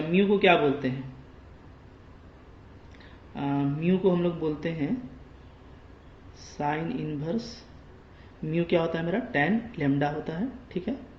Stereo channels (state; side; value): identical; both; correlation 1.00